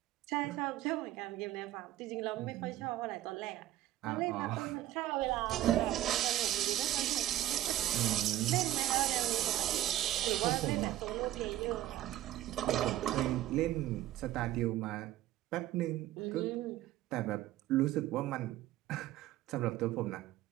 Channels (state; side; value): quieter; left; 14.1 dB